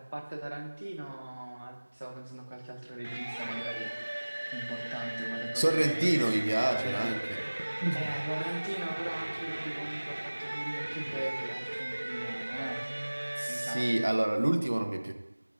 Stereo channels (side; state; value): both; inverted; correlation -1.00